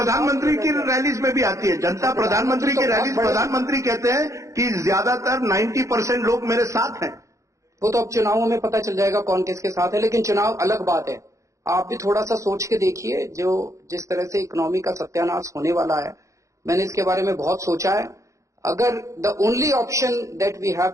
की रैलीज में भी आती है जनता. प्रधानमंत्री की रैलीज, प्रधानमंत्री कहते हैं कि ज्यादातर 90% लोग मेरे साथ हैं. वो तो अब चुनावों में पता चल जाएगा कौन किसके साथ है. लेकिन चुनाव अलग बात है. आप भी थोड़ा सा सोच के देखिए, जो जिस तरह से इकोनॉमी का सत्यानाश होने वाला है. मैंने इसके बारे में बहुत सोचा है. अगर the only option that we have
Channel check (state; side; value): late; left; 0.15 ms